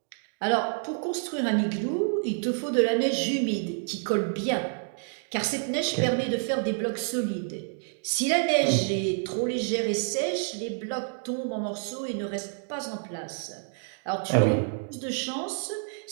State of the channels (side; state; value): left; silent; 59 dB below the other